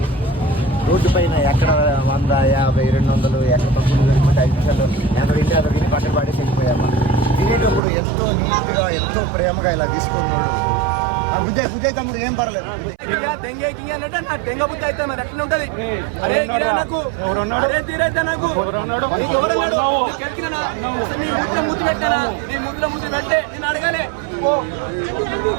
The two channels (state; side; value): drops out; left; at 7.8 s